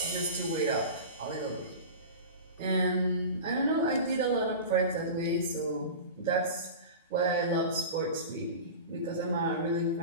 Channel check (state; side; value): inverted; both; correlation -0.31